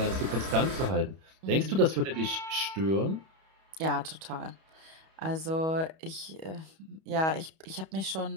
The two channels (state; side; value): late; left; 31 ms